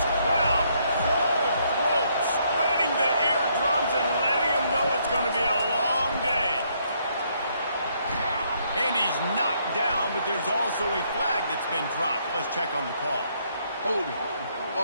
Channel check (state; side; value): inverted; both; correlation -0.71